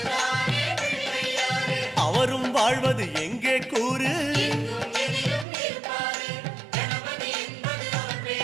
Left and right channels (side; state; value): left; drops out; at 5.5 s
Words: அவரும் வாழ்வது எங்கே கூறு?